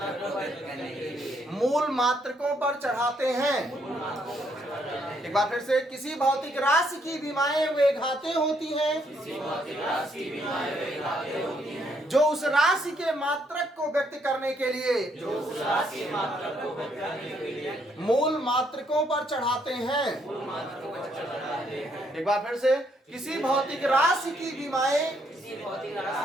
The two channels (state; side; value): normal; both; correlation 0.72